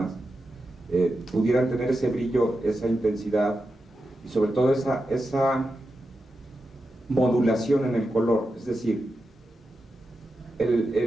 pudieran tener ese brillo, esa intensidad, y sobre todo esa modulación en el color. Es decir,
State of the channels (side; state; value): both; normal; correlation 0.89